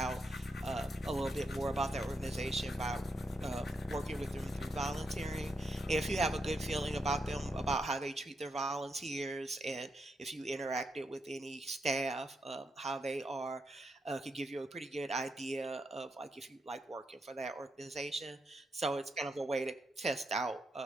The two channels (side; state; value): both; normal; correlation 0.82